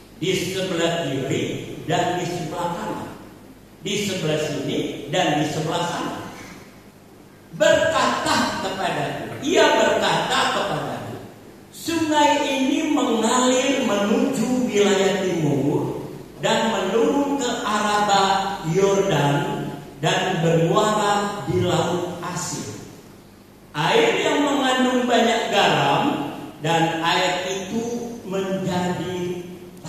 di sebelah kiri dan di sebelah kanan, di sebelah sini dan di sebelah sana. Ia berkata kepadaku, sungai ini mengalir menuju wilayah timur dan menurun ke Araba Yordan dan bermuara di Laut Asin. Air yang mengandung banyak garam, dan air itu menjadi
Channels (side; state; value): both; identical; correlation 1.00